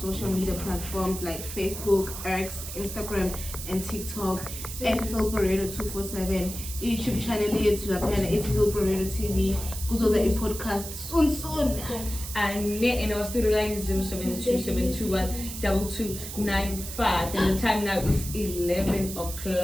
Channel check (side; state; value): right; noise; hiss, 9 dB below the sound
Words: social media platforms like Facebook, X, Instagram, and TikTok at Hillbrow 247. YouTube channel here to appear it's Hillbrow TV. Go to the podcast soon. And in our studio line is 072-721-2295, and the time now is 11